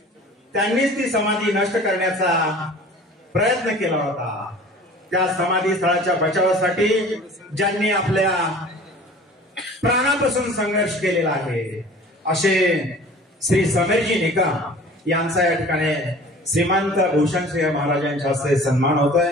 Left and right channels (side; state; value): both; normal; correlation 0.45